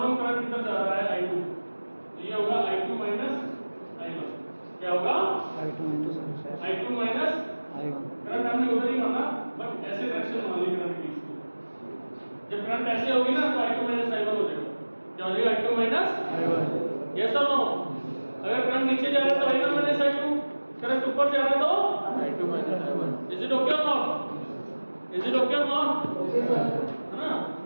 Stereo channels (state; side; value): inverted; both; correlation -1.00